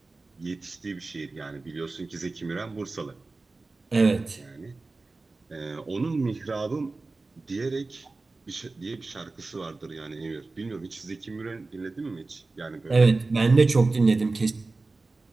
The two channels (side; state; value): left; quieter; 3.5 dB